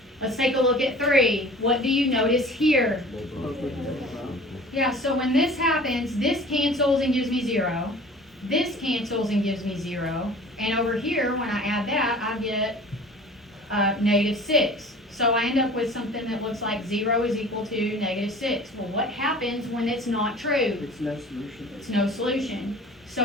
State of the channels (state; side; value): normal; both; correlation 0.44